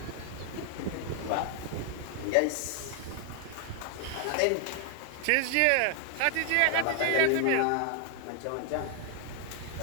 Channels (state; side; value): different; both; correlation 0.00